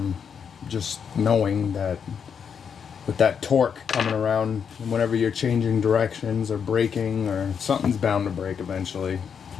just knowing that with that torque coming around, whenever you're changing directions or braking, or something's bound to break eventually.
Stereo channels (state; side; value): quieter; right; 7.0 dB